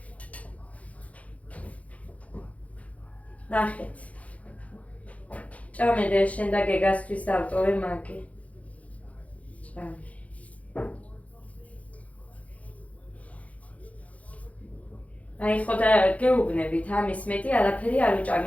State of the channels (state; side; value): late; right; 0.067 ms